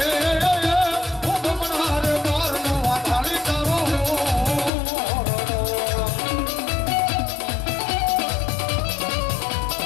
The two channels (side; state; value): right; drops out; at 4.7 s